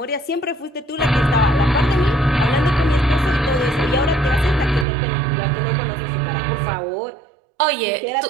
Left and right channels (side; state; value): left; drops out; at 4.9 s